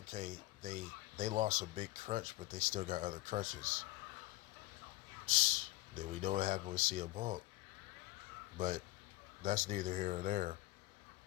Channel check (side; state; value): right; quieter; 19.0 dB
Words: they lost a big crutch, but they still got other crutches. Then we know what happened with CM Punk, but that's neither here nor there.